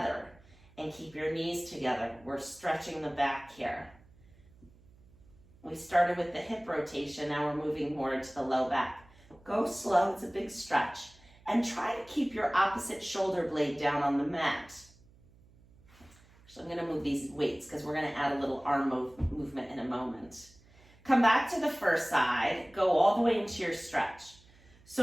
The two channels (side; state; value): right; noise; hum, 27 dB below the sound